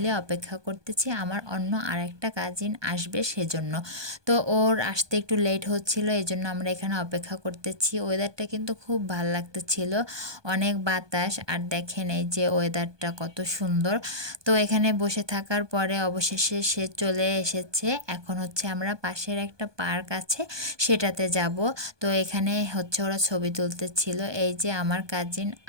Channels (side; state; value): left; late; 1.2 ms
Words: অপেক্ষা করতেছি আমার অন্য আরেকটা কাজিন আসবে সেজন্য। তো ওর আসতে একটু লেট হচ্ছিল, এই জন্য আমরা এখানে অপেক্ষা করতেছি। ওয়েদারটা কিন্তু খুব ভালো লাগতেছিল, অনেক বাতাস আর দেখেন এই যে ওয়েদারটা কত সুন্দর। তো এখানে বসে থাকার পরে অবশেষে সে চলে এসেছে। এখন হচ্ছে আমরা পাশের একটা পার্ক আছে সেটাতে যাব। তো এখানে হচ্ছে ওরা ছবি তুলতেছিল, এই যে আমার কাজিন